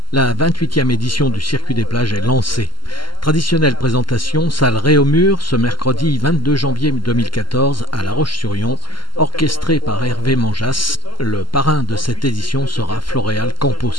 La 28e édition du Circuit des plages est lancée. Traditionnelle présentation, salle Réaumur, ce mercredi 22 janvier 2014 à La Roche-sur-Yon, orchestrée par Hervé Manjas. Le parrain de cette édition sera Floréal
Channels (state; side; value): late; right; 0.72 ms